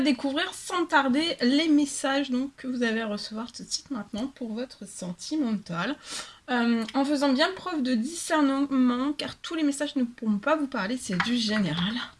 sans tarder les messages donc, que vous allez recevoir tout de suite maintenant pour votre sentimental. En faisant bien preuve de discernement, car tous les messages ne pourront pas vous parler, c'est du général.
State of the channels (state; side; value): identical; both; correlation 1.00